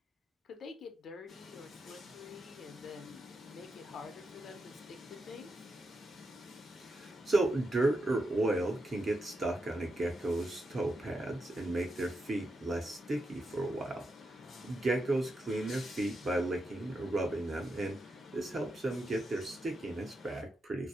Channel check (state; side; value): normal; both; correlation 0.85